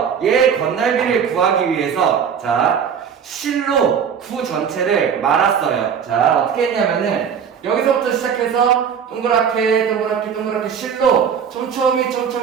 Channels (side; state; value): left; quieter; 7.3 dB